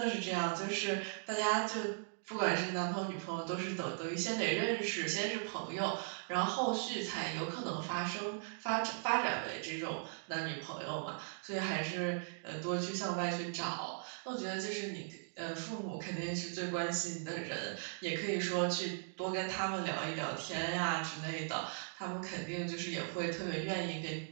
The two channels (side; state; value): left; silent; digital silence